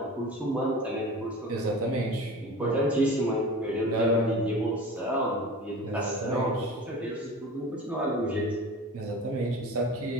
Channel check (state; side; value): normal; both; correlation 0.36